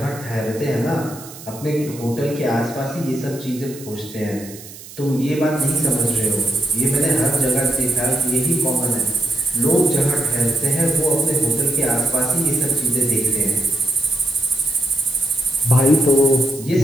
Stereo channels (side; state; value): right; noise; hiss, 16 dB below the sound